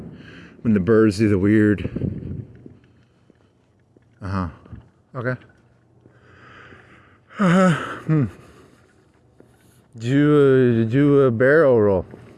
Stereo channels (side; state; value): both; identical; correlation 1.00